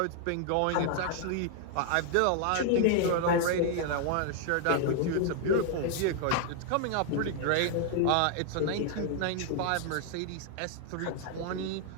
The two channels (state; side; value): different; both; correlation 0.00